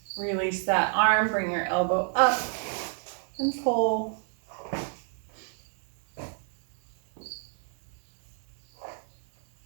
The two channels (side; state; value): left; silent; 55 dB below the other